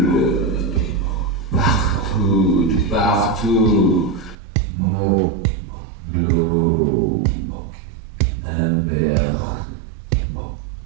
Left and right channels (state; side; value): drops out; left; at 4.4 s